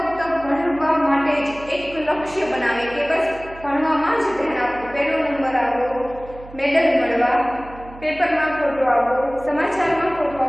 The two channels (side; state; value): right; noise; hum, 18 dB below the sound